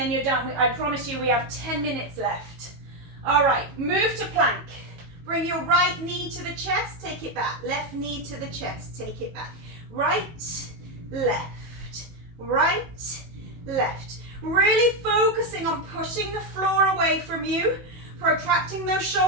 you're done. I promise you we have 10 minutes left. All right, move to plank. Bring your right knee to the chest, take it back. Left knee to the chest, take it back. Right, left, right, left. Really focusing on pushing the floor away from you, protracting those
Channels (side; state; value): left; late; 18 ms